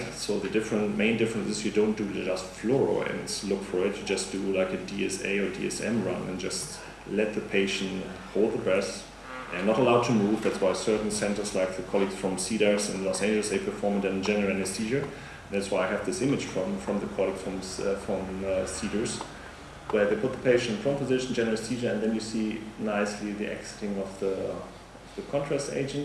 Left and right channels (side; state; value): both; identical; correlation 1.00